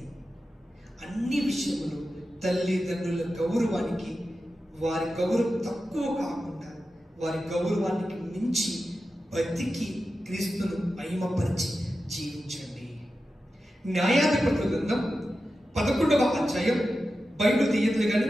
అన్ని విషయములు తల్లిదండ్రుల గౌరవానికి, వారి గౌరవం తక్కువ కాకుండా వారి గౌరవానికి మించి బతికి క్రీస్తును మహిమపరిచి జీవించండి. న్యాయాధిపతుల గ్రంథం 11వ అధ్యాయం, బైబిల్ తీయదులు కానీ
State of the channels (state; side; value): normal; both; correlation 0.92